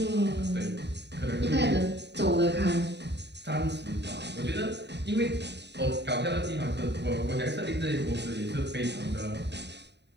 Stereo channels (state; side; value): late; left; 0.50 ms